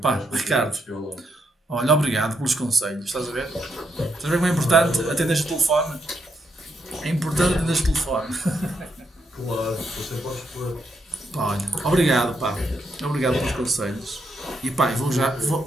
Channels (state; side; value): normal; both; correlation 0.79